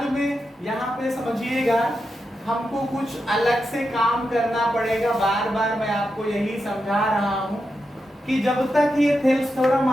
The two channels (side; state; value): both; normal; correlation 0.87